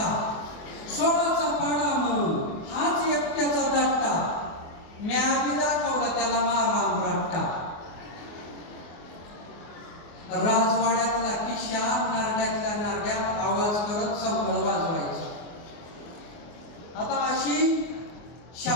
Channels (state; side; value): late; right; 24 ms